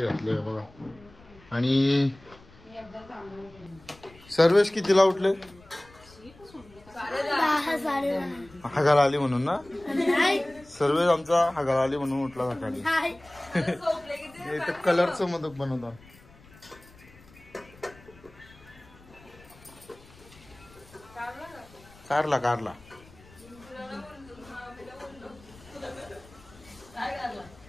घातले बघा. आणि सर्वेश कितीला उठले? 10 आली म्हणून ना. सर्वेश आमचा हगार आली म्हणून उठला सकाळी. इथं कलरचं मोदक बनवतात. कारला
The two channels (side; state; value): left; noise; rumble, 24 dB below the sound